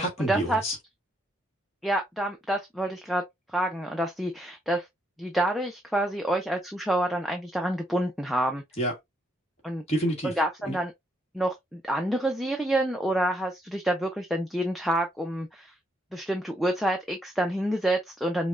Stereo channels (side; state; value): both; normal; correlation 0.75